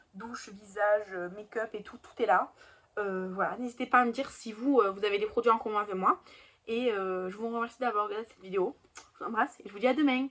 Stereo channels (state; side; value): identical; both; correlation 1.00